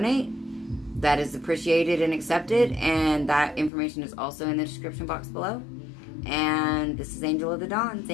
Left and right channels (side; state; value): right; drops out; at 3.7 s